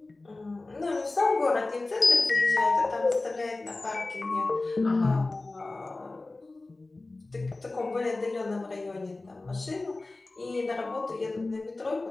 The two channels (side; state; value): right; quieter; 3.2 dB